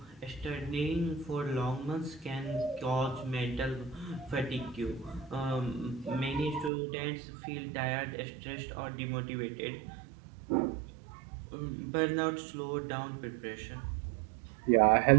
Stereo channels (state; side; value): drops out; left; at 6.7 s